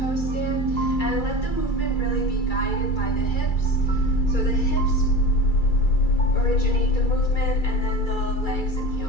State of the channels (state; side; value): late; right; 2.3 ms